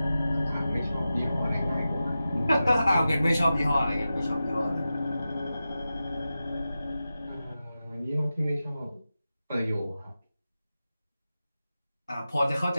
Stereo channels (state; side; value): inverted; both; correlation -0.93